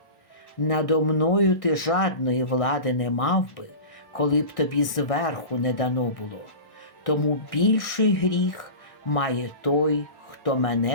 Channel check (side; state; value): right; late; 1.6 ms